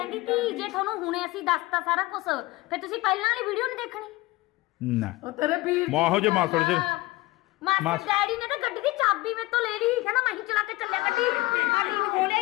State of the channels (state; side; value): quieter; right; 20.4 dB